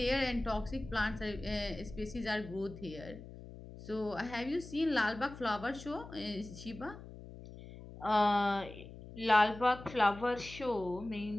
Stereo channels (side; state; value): left; noise; hum, 15 dB below the sound